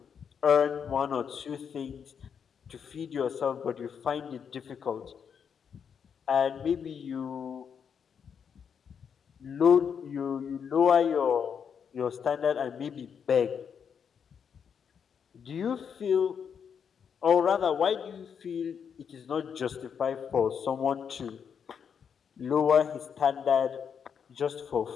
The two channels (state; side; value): quieter; right; 7.2 dB